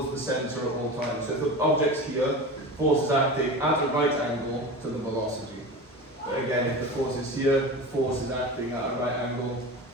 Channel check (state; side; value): normal; both; correlation 0.30